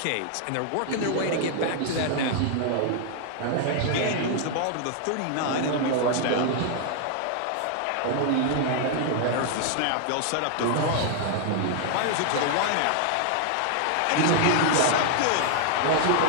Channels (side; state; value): both; different; correlation 0.00